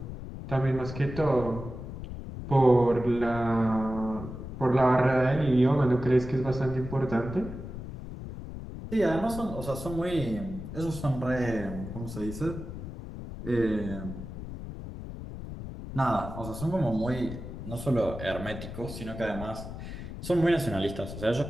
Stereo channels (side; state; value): left; noise; rumble, 9 dB below the sound